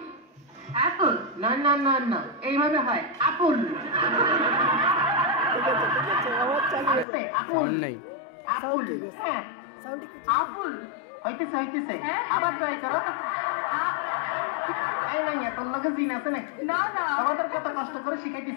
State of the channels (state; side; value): drops out; right; at 7.1 s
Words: অ্যাপল না না না না এইভাবে হয় আপেল সাউন্ড নাই সাউন্ড ঠিক আছে সাউন্ড ঠিক আছে আপেল হইতেছে আবার ট্রাই করো এই নাই তোর লগে দিন আছে নাকি না না আমাদের কত কষ্ট করে